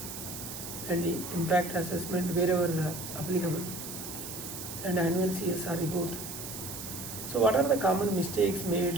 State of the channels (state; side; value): noise; right; hiss, 9 dB below the sound